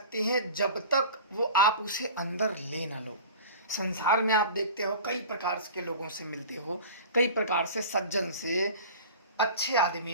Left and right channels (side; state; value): both; inverted; correlation -0.38